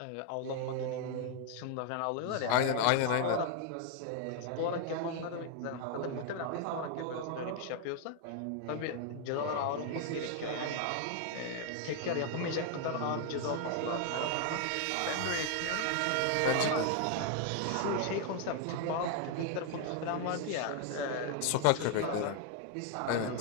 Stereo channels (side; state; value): both; different; correlation 0.00